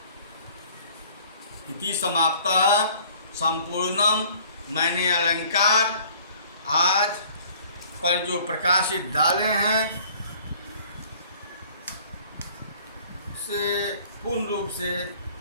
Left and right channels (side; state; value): both; inverted; correlation -0.53